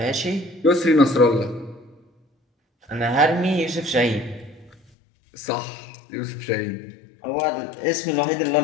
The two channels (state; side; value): drops out; right; at 4.8 s